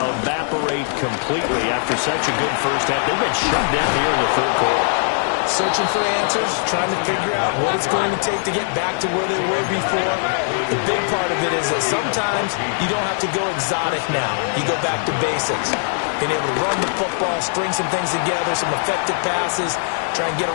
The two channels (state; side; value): silent; right; digital silence